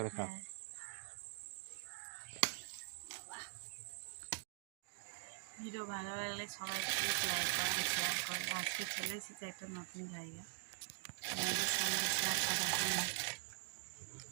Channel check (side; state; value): left; silent; digital silence